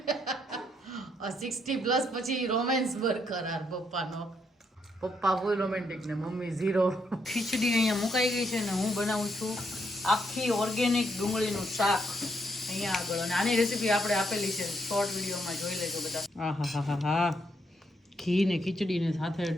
60+ પછી રોમેન્સ બરકરાર પપ્પાનો. પપ્પા ફૂલ રોમેન્ટિક ને મમ્મી ઝીરો. ખીચડી અહીંયા મુકાઈ ગઈ છે ને હું બનાવું છું આખી ઓર્ગેનિક ડુંગળીનું શાક અહીંયા આગળ. અને આની રેસીપી આપણે આપેલી છે, શોર્ટ વિડીયોમાં જોઈ લેજો બધા. હા, ઘી ને ખીચડી ને સાથે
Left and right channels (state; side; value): normal; both; correlation 0.76